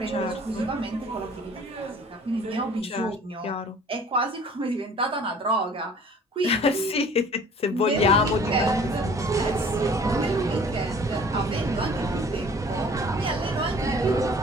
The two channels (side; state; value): both; normal; correlation 0.50